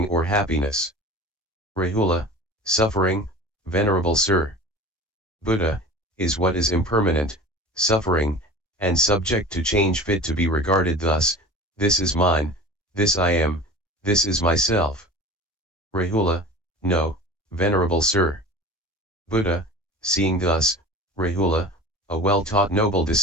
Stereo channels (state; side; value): normal; both; correlation 0.38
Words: or happiness? Rahula, suffering, venerable sir. Buddha, is what is impermanent, suffering, and subject to change, fit to be regarded thus: this is mine, this I am, this is myself. Rahula, no, venerable sir. Buddha, seeing thus, Rahula, a well-taught noble